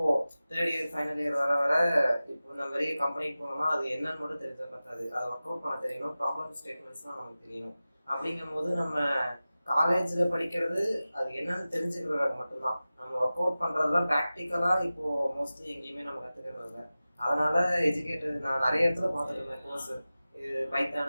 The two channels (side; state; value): both; inverted; correlation -0.96